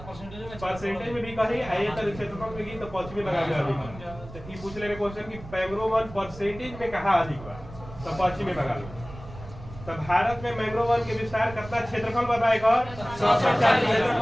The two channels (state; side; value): noise; right; rumble, 15 dB below the sound